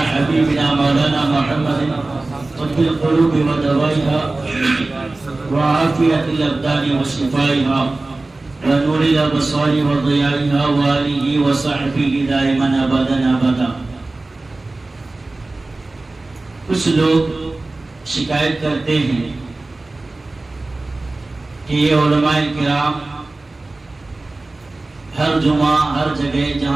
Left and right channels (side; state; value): left; quieter; 3.1 dB